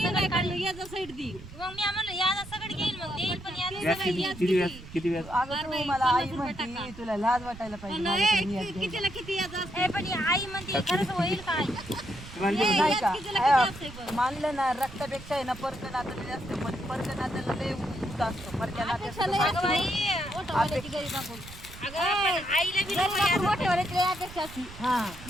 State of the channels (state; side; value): noise; right; rumble, 16 dB below the sound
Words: किती व्याज अगं तू मला आई म्हणती तुला लाज वाटायला पाहिजे माझ्याकडे मी आज नाही का मानलं ना रक्तापेक्षा आहे ना परक नातं जास्त पण परक नात्याला लय उत असतो परक्या